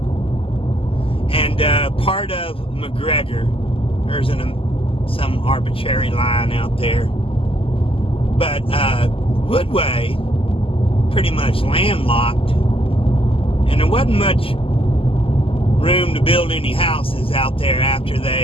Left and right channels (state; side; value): late; right; 0.26 ms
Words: And part of McGregor, there's some arbitrary line out there. But Woodway, pretty much landlocked, and there wasn't much room to build any houses out there after